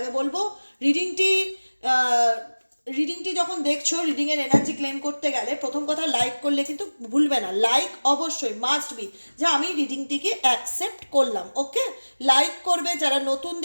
বলবো, রিডিংটি রিডিংটি যখন দেখছো, রিডিংয়ের এনার্জি ক্লেম করতে গেলে প্রথম কথা লাইক করলে কিন্তু ভুলবে না। লাইক অবশ্যই মাস্ট বি, যে আমি রিডিংটিকে অ্যাকসেপ্ট করলাম। ওকে, লাইক করবে। যারা নতুন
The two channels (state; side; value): inverted; both; correlation -1.00